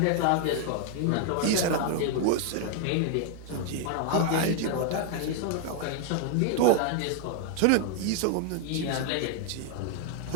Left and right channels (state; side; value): different; both; correlation 0.00